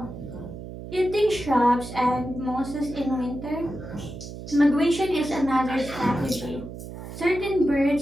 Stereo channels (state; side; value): noise; right; hum, 11 dB below the sound